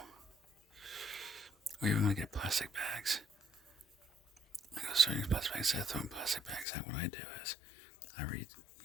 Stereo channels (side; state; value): right; drops out; at 6.7 s